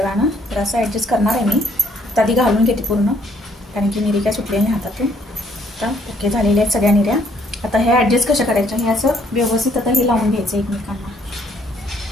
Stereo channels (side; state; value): both; normal; correlation 0.66